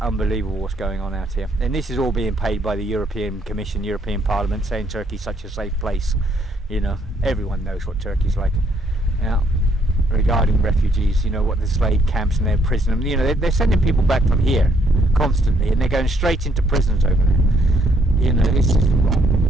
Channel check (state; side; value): normal; both; correlation 0.70